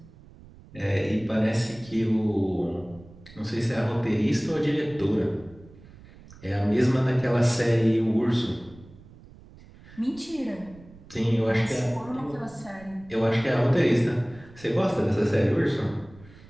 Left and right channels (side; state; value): right; noise; rumble, 22 dB below the sound